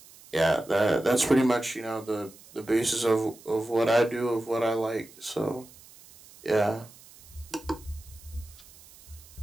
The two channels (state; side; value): noise; right; hiss, 22 dB below the sound